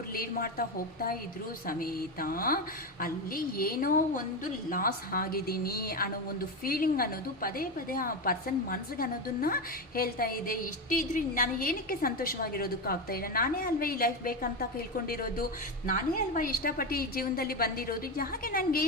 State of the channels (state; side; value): normal; both; correlation 0.14